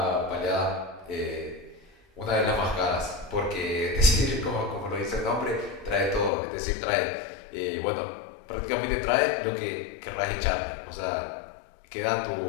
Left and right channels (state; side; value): drops out; right; at 6.3 s